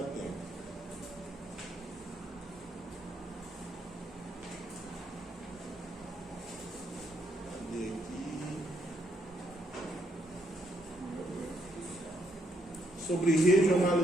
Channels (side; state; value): both; normal; correlation 0.75